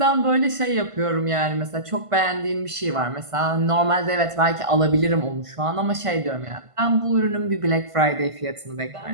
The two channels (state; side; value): late; left; 1.5 ms